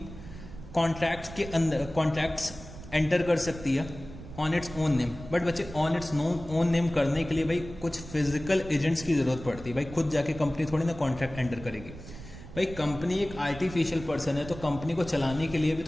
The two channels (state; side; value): noise; right; rumble, 14 dB below the sound